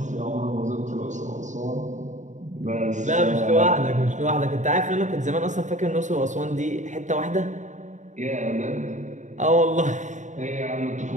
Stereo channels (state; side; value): late; left; 0.35 ms